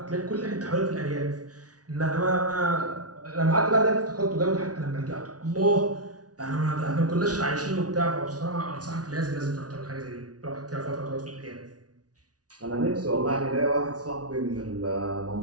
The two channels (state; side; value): late; left; 0.68 ms